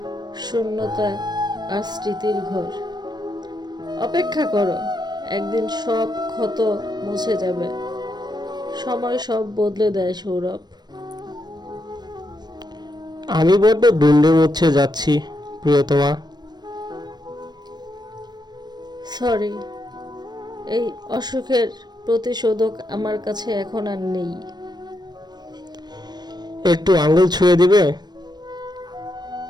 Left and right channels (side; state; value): left; late; 0.20 ms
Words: শূন্যতা আর স্মৃতির ঘর। অপেক্ষা করো, একদিন সব ক্ষত মুছে যাবে। সময় সব বদলে দেয় সৌরভ। আমি বড্ড দুন্ডে মুচ্ছে যাচ্ছি প্রিয়তমা। সরি, এই অসুখের প্রতিশোধক আমার কাছে এখন আর নেই। একটু আঙুল ছুঁয়ে দিবে